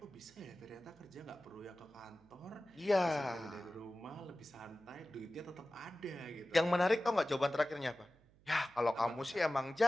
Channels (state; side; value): noise; right; hum, 28 dB below the sound